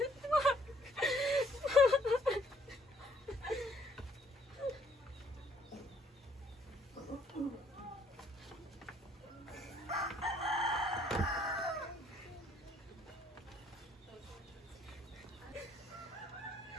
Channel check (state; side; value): normal; both; correlation 0.65